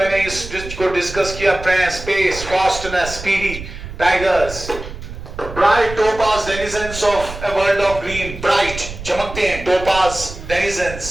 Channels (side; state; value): right; noise; rumble, 11 dB below the sound